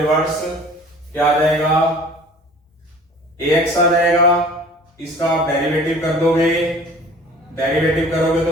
क्या आ जाएगा, ax आ जाएगा, इसका आप डेरिवेटिव कर दोगे, डेरिवेटिव करोगे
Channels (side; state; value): both; normal; correlation 0.47